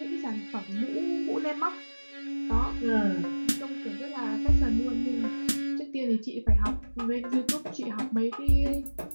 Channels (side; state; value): both; inverted; correlation -1.00